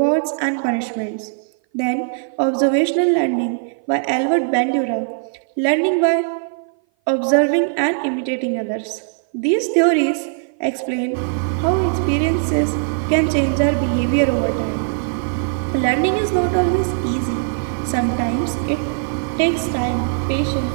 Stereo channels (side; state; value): left; silent; 58 dB below the other